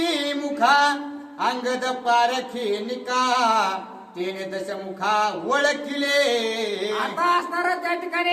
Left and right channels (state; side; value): identical; both; correlation 1.00